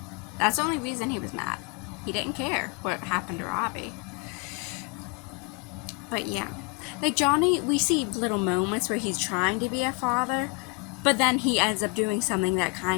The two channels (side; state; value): right; quieter; 31.5 dB